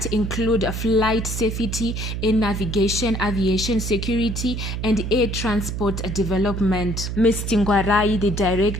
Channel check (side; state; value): right; noise; hum, 4 dB below the sound